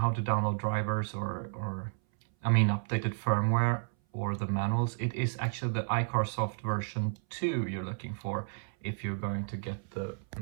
to download drivers or I mean updated firmware or the manuals. It is actually the iCarsoft version 2 you're looking for if you're going to get the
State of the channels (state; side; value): silent; left; 56 dB below the other